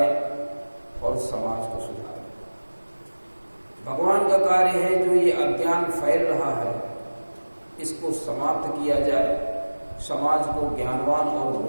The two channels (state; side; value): inverted; both; correlation -1.00